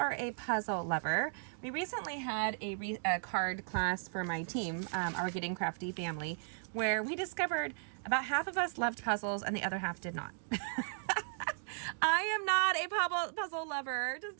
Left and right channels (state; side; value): silent; left; digital silence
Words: a puzzle lover, we recently had a card class for my team, our Getting Crafty family, where we discovered about half of us loved puzzles and the other half did not. I am not a puzzle lover,